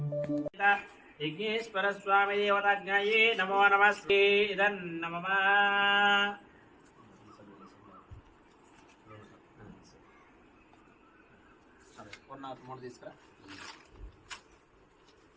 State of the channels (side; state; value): both; identical; correlation 1.00